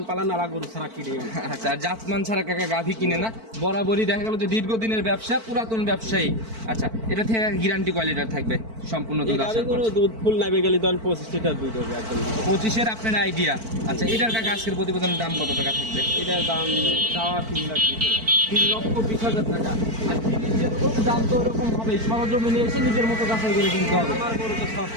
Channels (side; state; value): left; late; 4.5 ms